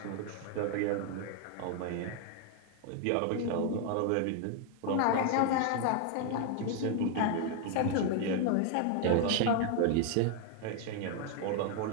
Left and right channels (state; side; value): different; both; correlation 0.01